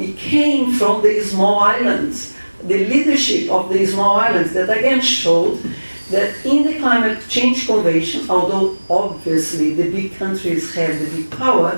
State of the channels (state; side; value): inverted; both; correlation -1.00